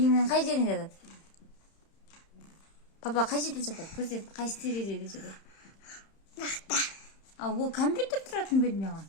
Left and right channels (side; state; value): right; late; 31 ms